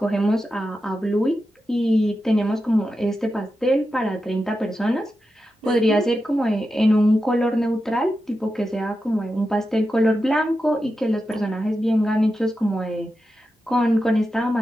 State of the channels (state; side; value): normal; both; correlation 0.90